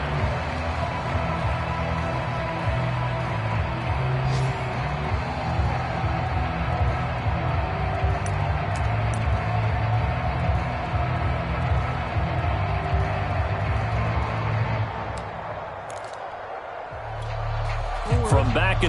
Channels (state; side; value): identical; both; correlation 1.00